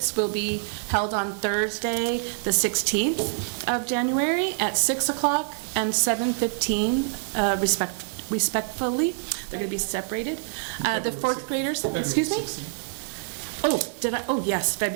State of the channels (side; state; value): left; silent; digital silence